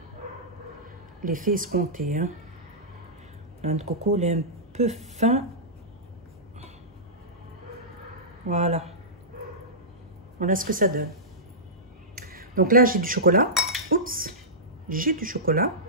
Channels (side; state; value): both; normal; correlation -0.16